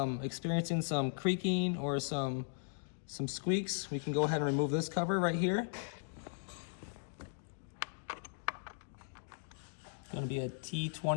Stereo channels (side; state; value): right; silent; digital silence